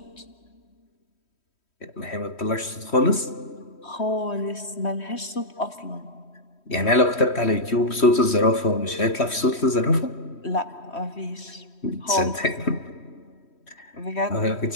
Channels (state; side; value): late; right; 3.1 ms